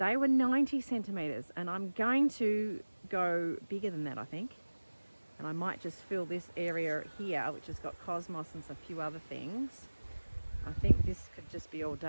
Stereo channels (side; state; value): both; inverted; correlation -1.00